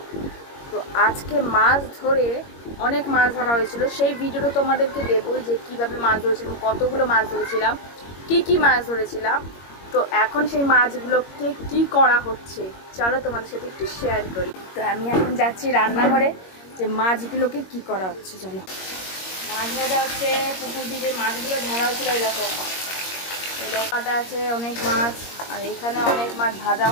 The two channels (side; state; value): right; late; 21 ms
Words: তো আজকে মাছ ধরে অনেক মাছ ধরা হয়েছিল, সেই ভিডিওটা তোমাদেরকে দেবো যে কীভাবে মাছ ধরেছিলাম, কতগুলো মাছ ধরেছিলাম, কী মাছ ধরেছিলাম। তো এখন সেই মাছগুলোকে কি করা হচ্ছে চলো তোমাদের সাথে একটু শেয়ার করি। তো আমি এখন যাচ্ছি রান্নাঘরে, যে মাছগুলোকে কি করা হচ্ছে চলো। মাছ ভাজা হচ্ছে, পুকুর দিয়ে মাছগুলো ধরা হয়েছিল এরকম কাটা আছে অনেক মাছ, আর এখানে অনেক মাছ ভাজা